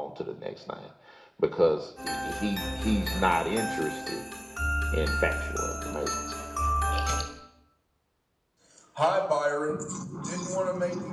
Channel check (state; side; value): identical; both; correlation 1.00